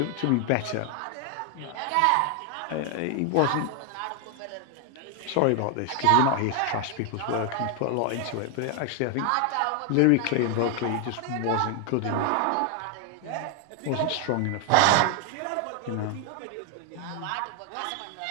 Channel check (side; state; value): both; different; correlation 0.00